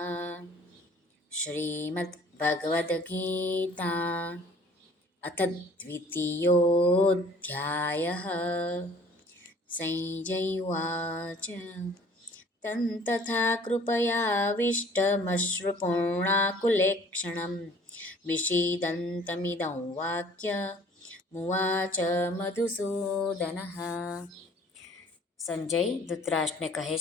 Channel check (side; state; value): both; normal; correlation 0.52